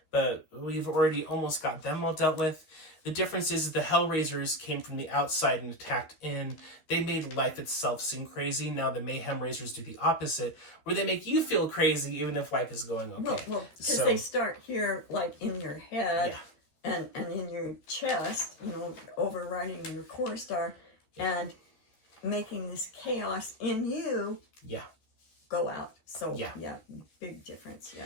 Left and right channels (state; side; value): late; right; 13 ms